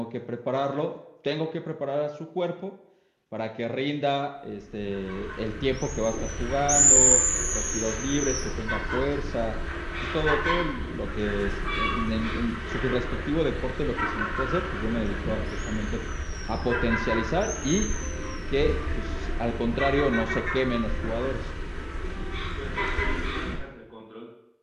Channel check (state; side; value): identical; both; correlation 1.00